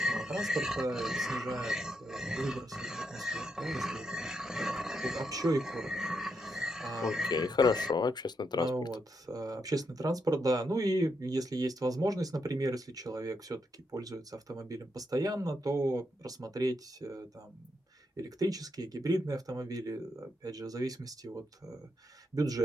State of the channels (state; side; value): normal; both; correlation 0.81